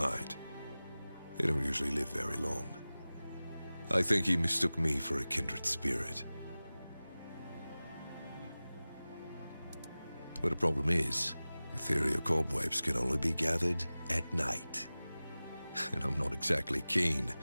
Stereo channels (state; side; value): inverted; both; correlation -0.97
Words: They don't usually live very long. I think he mistook me for a kindred spirit. But the problem is, ethereal cobwebs can only be gathered at night. And I'm not exactly keen